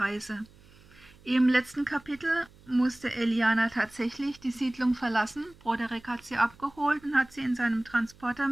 Im letzten Kapitel musste Eliana tatsächlich die Siedlung verlassen. Broderick hat sie abgeholt und hat sie in seinem Transporter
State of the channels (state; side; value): noise; right; hum, 26 dB below the sound